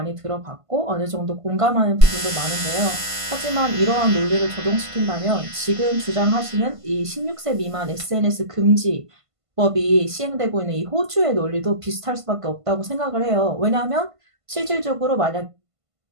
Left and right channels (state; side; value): late; left; 1.5 ms